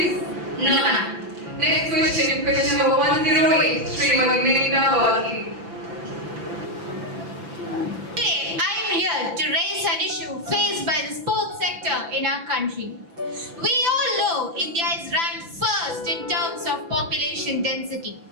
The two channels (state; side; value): late; left; 5.9 ms